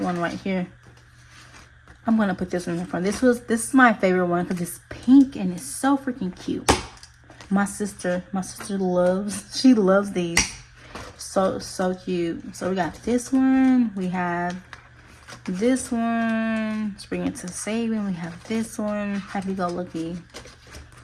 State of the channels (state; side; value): identical; both; correlation 1.00